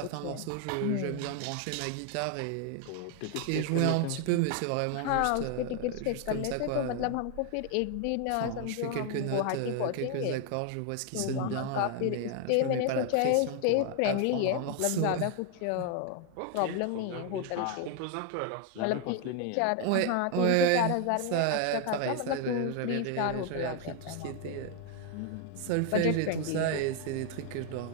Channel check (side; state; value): both; different; correlation 0.01